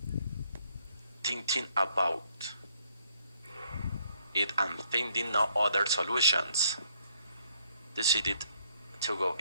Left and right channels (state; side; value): inverted; both; correlation -0.69